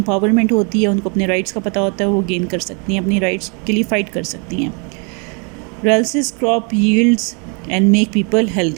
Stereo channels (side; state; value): left; quieter; 35.0 dB